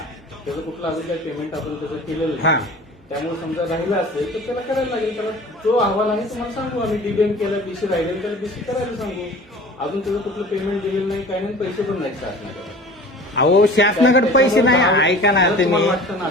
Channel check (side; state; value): both; normal; correlation 0.42